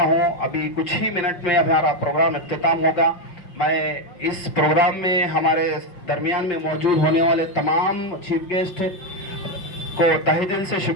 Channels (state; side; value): late; right; 5.7 ms